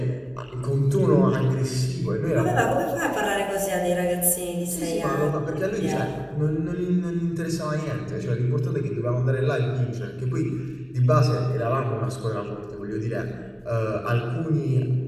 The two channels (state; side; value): identical; both; correlation 1.00